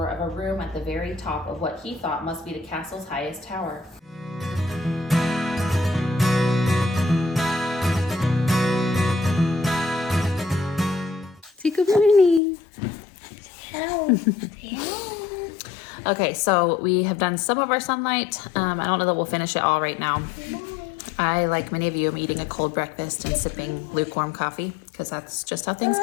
of a room at the very top of what he thought must be the castle's highest tower. Say good morning. Hello. Okay, so we have done some of our sunlight. I don't know that we'll finish it all right now. I, like many of you, am eating a cold breakfast and sipping lukewarm coffee because that's just how things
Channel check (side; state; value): right; drops out; at 12.4 s